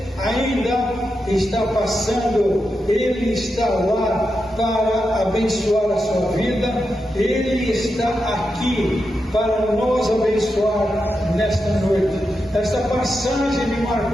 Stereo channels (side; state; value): both; normal; correlation 0.87